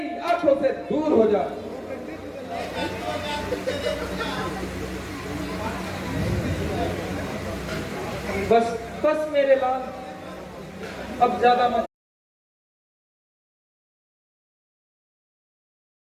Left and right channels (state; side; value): identical; both; correlation 1.00